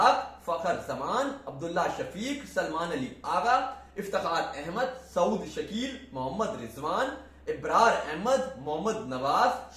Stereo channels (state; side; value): identical; both; correlation 1.00